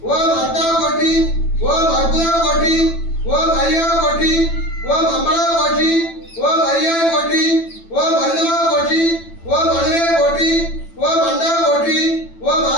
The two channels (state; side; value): late; right; 9.0 ms